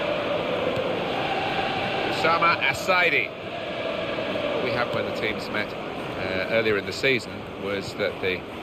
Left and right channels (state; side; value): identical; both; correlation 1.00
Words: Assaidi. What we had when the teams met earlier in the season was that the